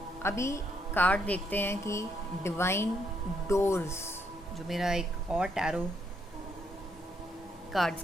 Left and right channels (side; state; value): both; normal; correlation 0.74